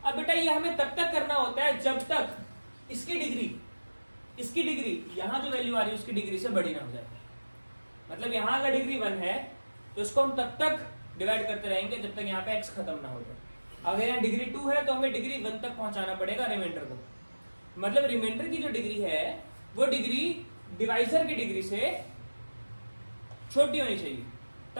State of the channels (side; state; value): both; inverted; correlation -1.00